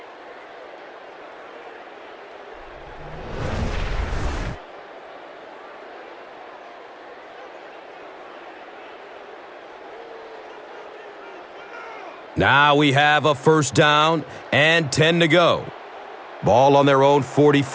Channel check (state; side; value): identical; both; correlation 1.00